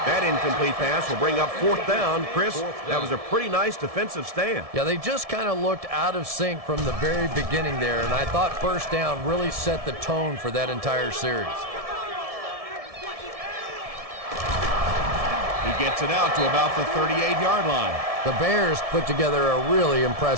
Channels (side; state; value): left; late; 1.7 ms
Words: That incomplete pass will bring up 4th down. Chris, that was a pretty nice defensive stand. Yeah, they just kind of looked out of sync from the very beginning there, and I thought first down really set the tone for that entire series. He gets it out to about the 38-yard line. The Bears put together a really